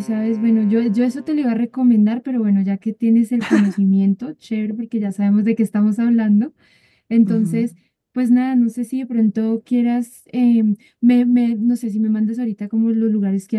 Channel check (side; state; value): both; identical; correlation 1.00